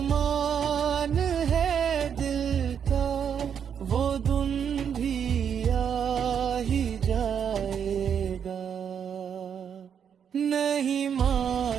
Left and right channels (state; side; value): quieter; left; 7.9 dB